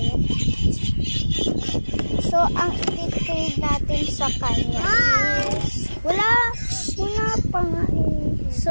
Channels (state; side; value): inverted; both; correlation -1.00